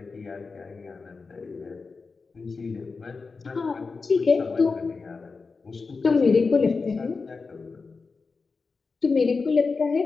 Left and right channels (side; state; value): right; quieter; 4.4 dB